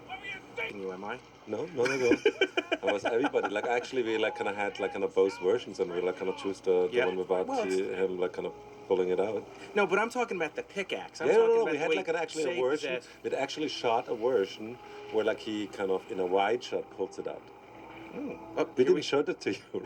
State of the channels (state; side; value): identical; both; correlation 1.00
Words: You, am I? No. I was everybody. Actually, we had both versions, and we choose the one without him pulling it out. No, but I'm talking about the pickaxe. We had actually a version. We'd actually shot a version where he in a wide shot pulls it out. Oh, We here didn't show that to